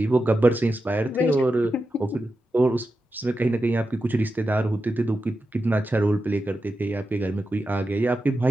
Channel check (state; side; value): normal; both; correlation 0.90